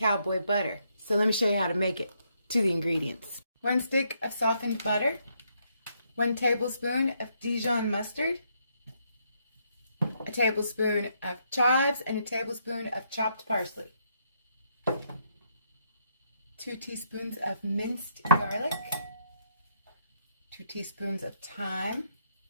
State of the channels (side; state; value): both; inverted; correlation -0.74